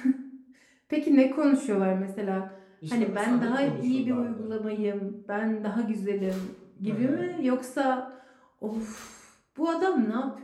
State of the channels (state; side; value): identical; both; correlation 1.00